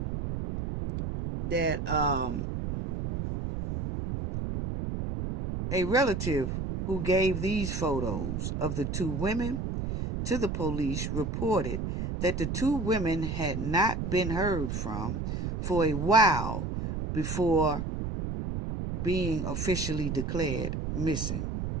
that a relative who gave these photos of the two women to the police reported that the two women had not been heard from for a while before being officially declared missing.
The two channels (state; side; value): noise; right; rumble, 3 dB below the sound